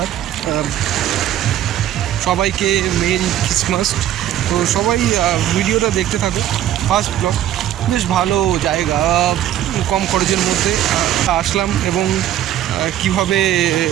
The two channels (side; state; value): left; quieter; 11.9 dB